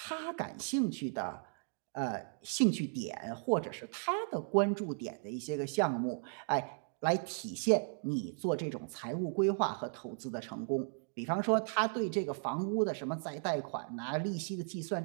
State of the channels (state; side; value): silent; left; 54 dB below the other